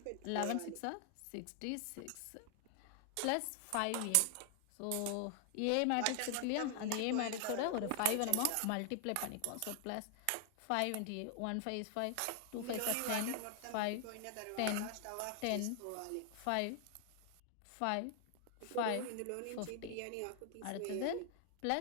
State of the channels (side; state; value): both; different; correlation 0.00